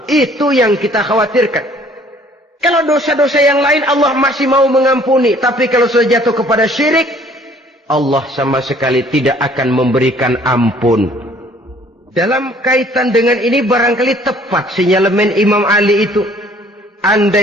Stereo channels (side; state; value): both; normal; correlation 0.57